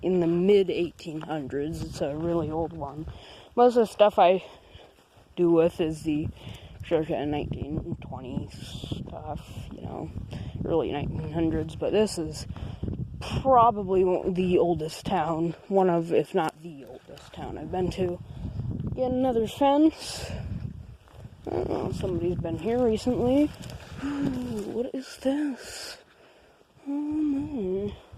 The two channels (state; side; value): identical; both; correlation 1.00